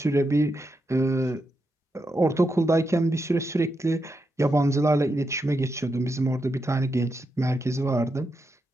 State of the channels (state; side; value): normal; both; correlation 0.85